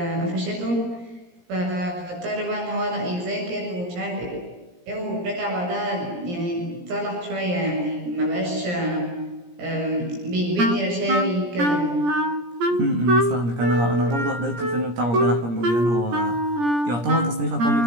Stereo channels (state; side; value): late; left; 17 ms